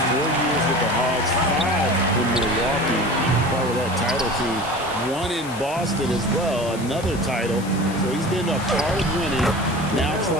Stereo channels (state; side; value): noise; left; hiss, 16 dB below the sound